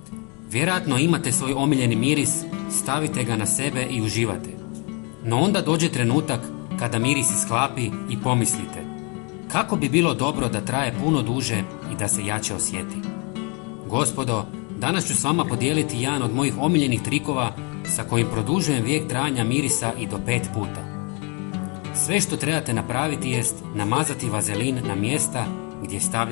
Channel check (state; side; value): quieter; right; 33.2 dB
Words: Vjerojatno imate svoj omiljeni miris, stavite ga na sebe i uživate. No onda dođe trenutak kada miris isklapi i pomislite kako bi bilo dobro da traje puno duže i da se jače osjeti. Gospodo, danas ću s vama podijeliti jedan od mojih omiljenih trikova sa kojim produžujem vijek trajanja mirisa i do 5 puta. Sve što trebate napraviti jest namazati vazelin na mjesta gdje